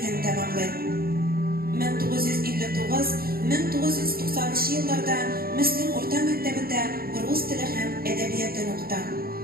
tamomlaydi. 1959-1990 yıllarda Müslüm o'rta maktabida rus tili ham edebiyotini o'qidi.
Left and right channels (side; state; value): left; late; 0.44 ms